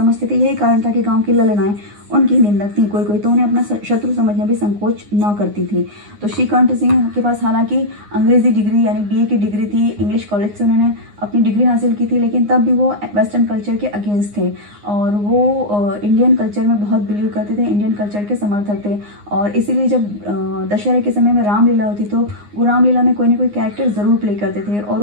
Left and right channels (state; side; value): late; left; 9.7 ms